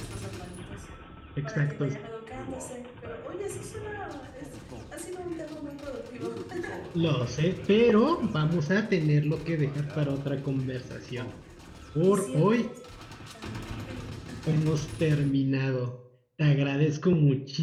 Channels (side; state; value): both; identical; correlation 1.00